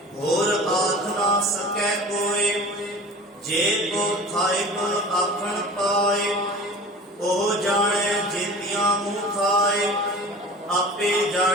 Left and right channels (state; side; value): normal; both; correlation 0.39